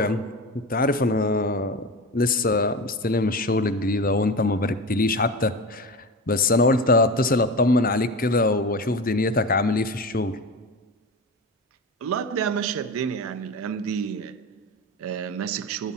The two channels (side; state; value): both; normal; correlation 0.25